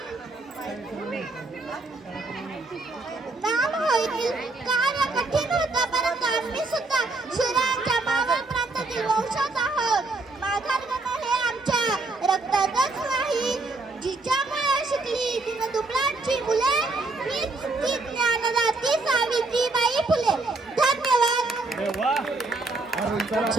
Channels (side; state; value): left; quieter; 3.3 dB